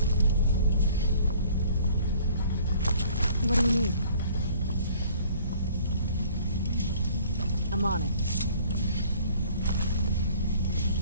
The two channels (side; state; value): both; inverted; correlation -0.55